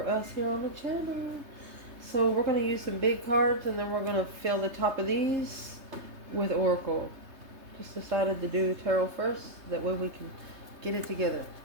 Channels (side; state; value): left; late; 3.2 ms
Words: us here on the channel. So we're gonna use some big cards, and then we're gonna fill the top of these with oracle. Just decided to do tarot first. That way we can get it together.